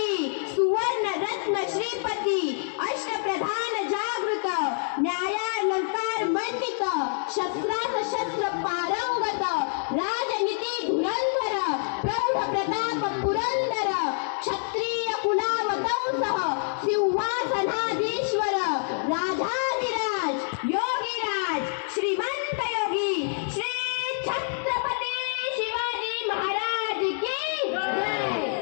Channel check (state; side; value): silent; right; digital silence